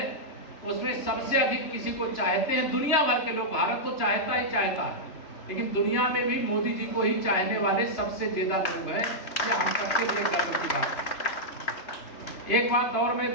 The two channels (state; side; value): late; right; 3.0 ms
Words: उसमें सबसे अधिक किसी को चाहते हैं दुनिया भर के लोग। भारत तो चाहता ही चाहता है, लेकिन दुनिया में भी मोदी जी को ही चाहने वाले सबसे ज्यादा लोग हैं। ये हम सबके लिए गर्व की बात है। एक बात और मैं